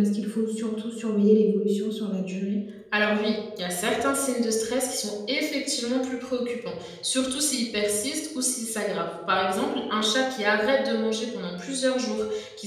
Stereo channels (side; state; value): both; identical; correlation 1.00